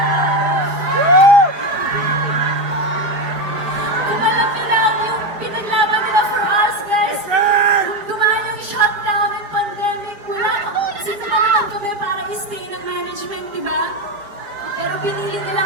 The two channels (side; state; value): left; late; 5.0 ms